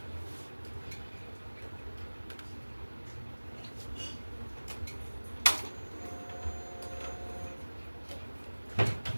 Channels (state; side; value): inverted; both; correlation -1.00